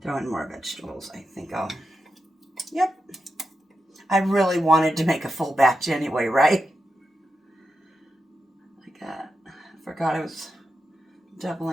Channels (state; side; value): normal; both; correlation 0.88